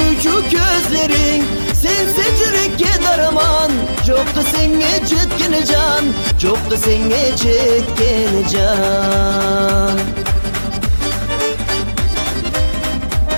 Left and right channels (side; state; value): both; inverted; correlation -1.00